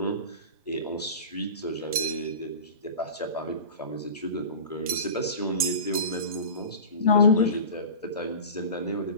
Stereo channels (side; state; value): both; inverted; correlation -0.34